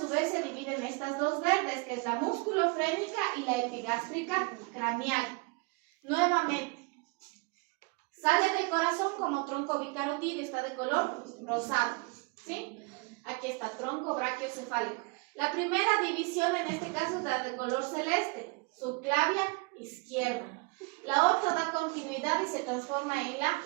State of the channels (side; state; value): left; quieter; 28.4 dB